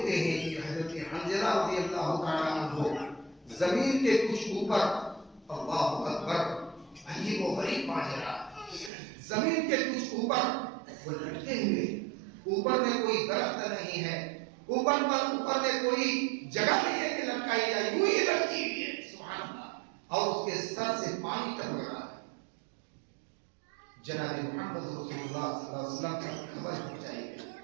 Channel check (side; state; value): left; drops out; at 8.9 s